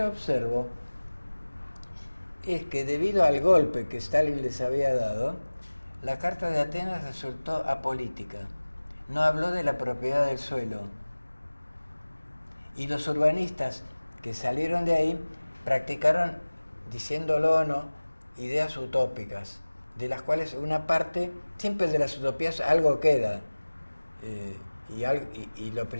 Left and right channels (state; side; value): inverted; both; correlation -1.00